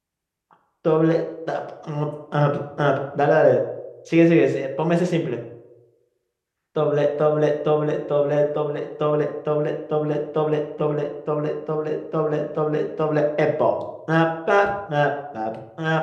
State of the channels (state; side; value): identical; both; correlation 1.00